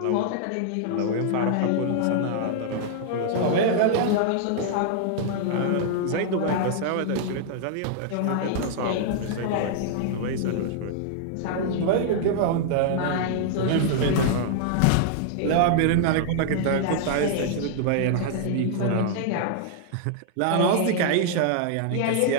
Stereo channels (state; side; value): different; both; correlation -0.01